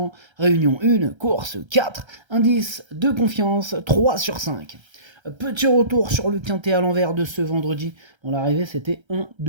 réunion 1, course 4, indice de confiance 3 sur 5. Petit retour sur le quintet à l'envers de ce vendredi. Bon, l'arrivée, c'était 1,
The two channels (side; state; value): left; late; 1.3 ms